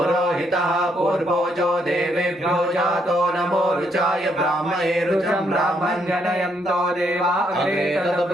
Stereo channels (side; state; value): both; normal; correlation 0.74